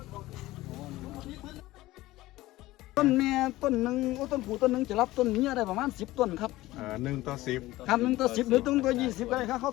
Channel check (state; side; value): quieter; right; 17.6 dB